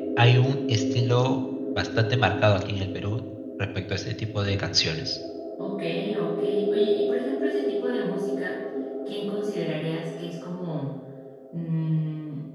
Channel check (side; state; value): both; identical; correlation 1.00